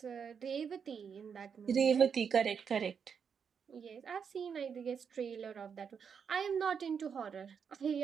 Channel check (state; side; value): quieter; left; 6.8 dB